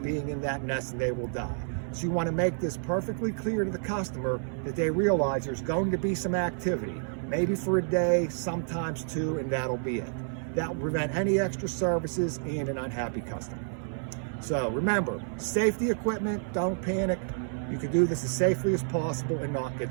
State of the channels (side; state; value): left; silent; 58 dB below the other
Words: being in that nest, and they will die. So you want to make this perfectly clear to the customer that they realize there's going to be some activity, maybe for a day, sometimes 2, and that'll be it. That will prevent any extra services and an unhappy customer. So remember, safety equipment, don't panic. You can do this as safely as possible and not get